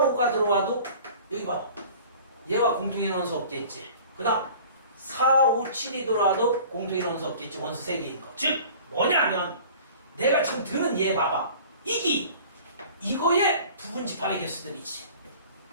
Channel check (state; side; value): inverted; both; correlation -0.45